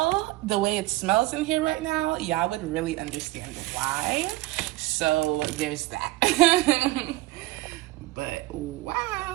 the way it smells in here right now, y'all would really understand why. So there's that. But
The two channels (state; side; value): quieter; left; 18.5 dB